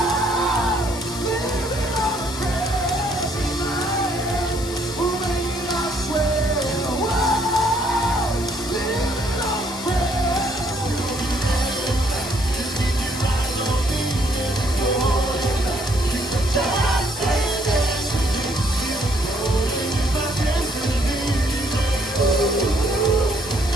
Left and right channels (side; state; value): left; noise; hiss, 12 dB below the sound